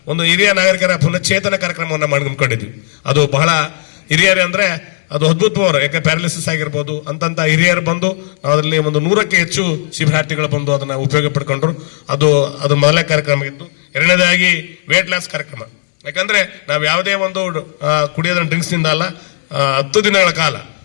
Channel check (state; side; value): silent; right; 70 dB below the other